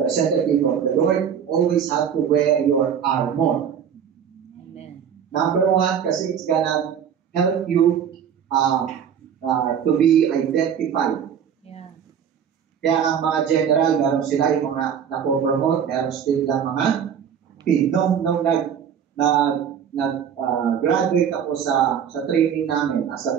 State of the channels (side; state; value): left; quieter; 8.1 dB